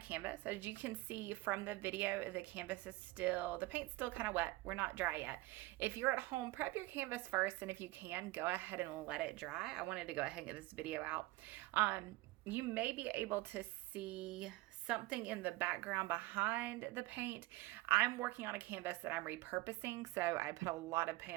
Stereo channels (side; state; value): left; quieter; 20.1 dB